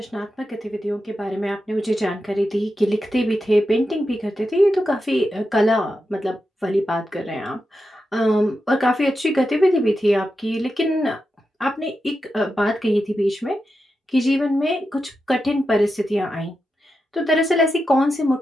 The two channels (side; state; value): both; normal; correlation 0.89